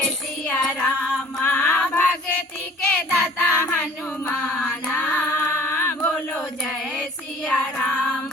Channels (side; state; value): both; normal; correlation 0.50